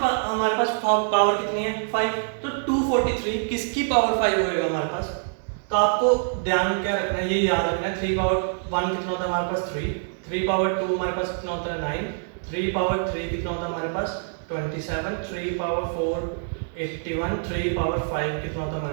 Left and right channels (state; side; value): silent; left; digital silence